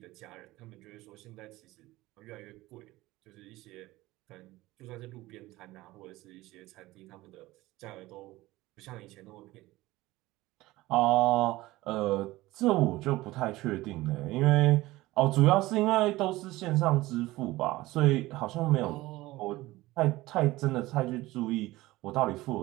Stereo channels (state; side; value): quieter; left; 18.5 dB